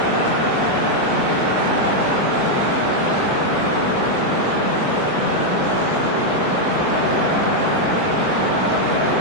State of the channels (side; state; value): left; late; 18 ms